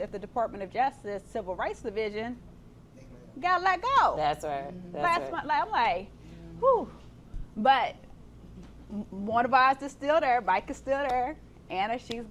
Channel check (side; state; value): both; identical; correlation 1.00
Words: the Department of Justice Civil Rights Division, got let go. That's right. I'm like, whew. But one of ours is still there. Mike is still there. Anna, she's